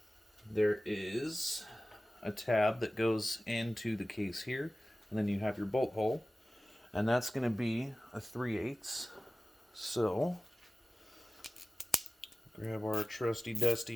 There is a tab that goes into the case here, and then you have your bolt hole, and that's going to be a 3/8. So grab our trusty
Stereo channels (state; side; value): normal; both; correlation 0.96